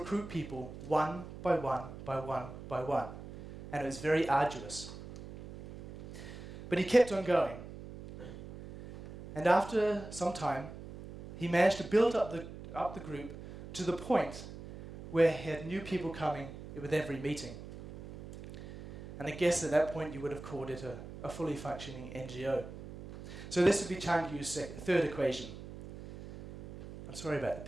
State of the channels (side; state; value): right; noise; hum, 13 dB below the sound